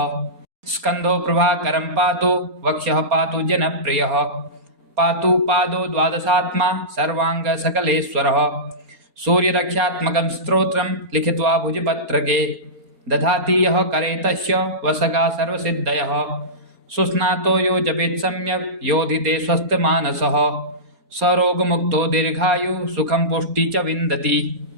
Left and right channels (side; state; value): left; late; 4.3 ms